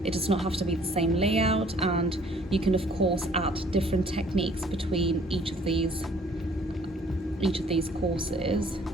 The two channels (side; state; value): both; normal; correlation 0.58